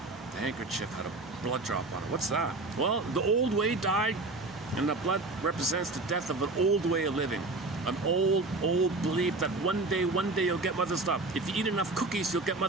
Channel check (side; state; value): left; quieter; 3.3 dB